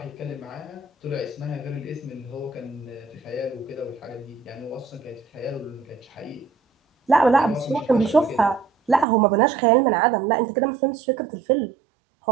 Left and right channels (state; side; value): drops out; left; at 9.1 s